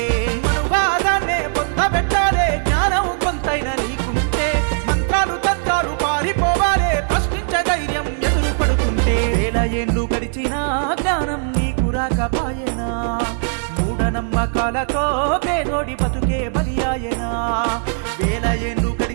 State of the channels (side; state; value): left; silent; digital silence